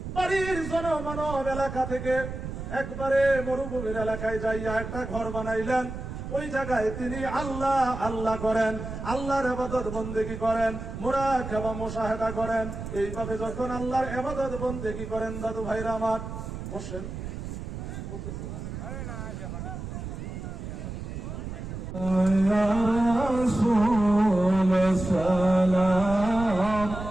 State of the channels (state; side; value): noise; right; rumble, 8 dB below the sound